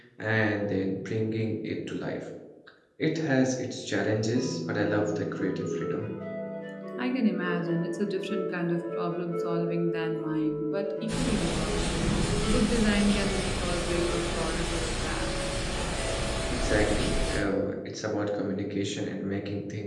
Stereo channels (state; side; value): identical; both; correlation 1.00